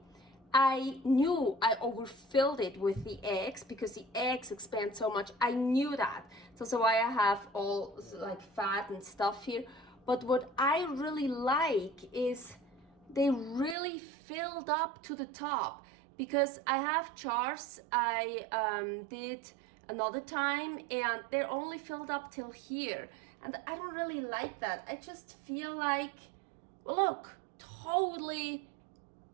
I knew I overfilled it with the eggs because the eggs expand so much. I knew that. So that's why I have all like fat and stuff here. But what I really like is they really filled up to the top, because I have jars I did another time and they're only filled up till here, and I don't really like that. I just feel like, well, look, totally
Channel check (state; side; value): drops out; left; at 13.8 s